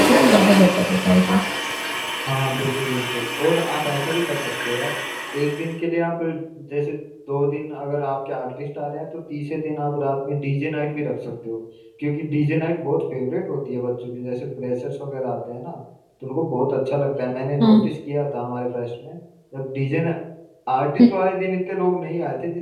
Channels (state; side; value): identical; both; correlation 1.00